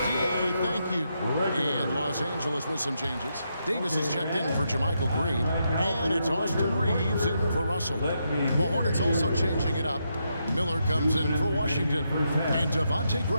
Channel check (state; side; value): inverted; both; correlation -0.81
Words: D.A. Thank you. And Los Angeles with some changes. Davis is checked in for Jermichael Green. And it's Austin Reeves in for Russell. The Hornets also changing it up. Miller comes in for Washington. And Devontae